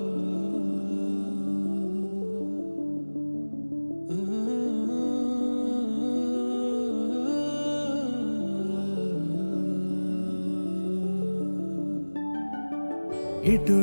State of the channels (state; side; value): inverted; both; correlation -1.00